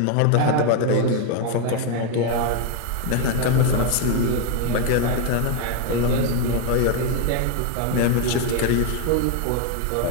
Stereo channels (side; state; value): both; different; correlation 0.01